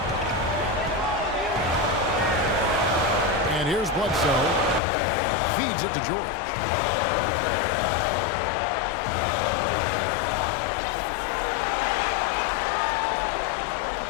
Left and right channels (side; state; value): right; drops out; at 4.8 s